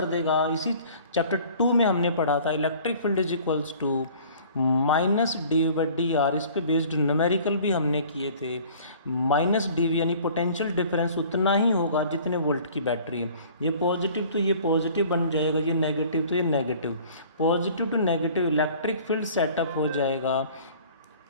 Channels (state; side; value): inverted; both; correlation -0.50